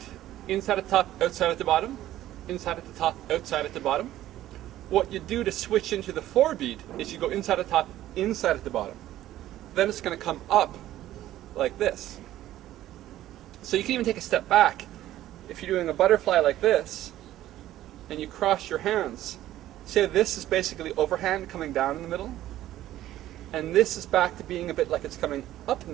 inside at the top, outside at the bottom, inside at the top, outside at the bottom, what you do to switch into the 4-beat is you go inside at the top, inside at the bottom. Then it's going to come up like this. So you can even take a step back. If you're doing a butterfly like this, and you cross your hands, say this is basically overhand coming down in the middle, and this is back to being a bit like it's coming up in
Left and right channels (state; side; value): quieter; left; 13.8 dB